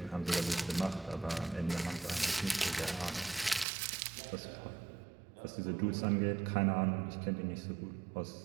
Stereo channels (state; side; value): drops out; left; at 3.7 s